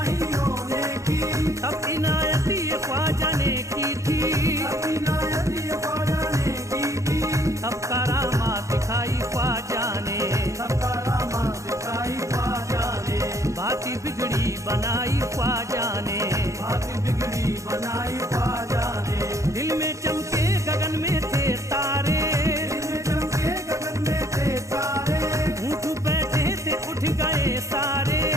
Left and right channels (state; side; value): late; left; 0.15 ms